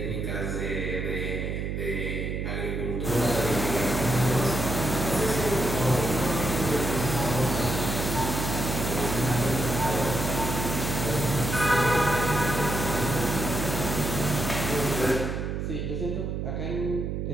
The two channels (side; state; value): right; noise; hum, 2 dB below the sound